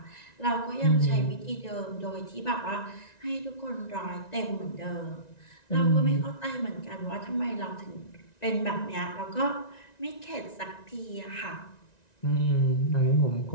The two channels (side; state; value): right; late; 1.9 ms